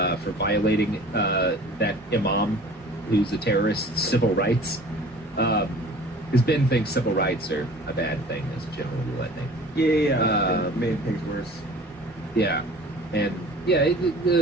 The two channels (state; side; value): normal; both; correlation 0.45